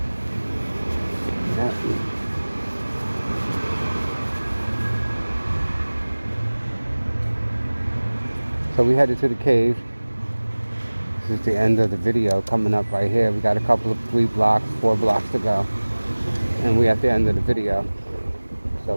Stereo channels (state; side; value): inverted; both; correlation -1.00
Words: Yeah. So we headed to the cave. This is the end of the video coming up right here. We got a couple of 4 blocks to go. And we're at the end of the video.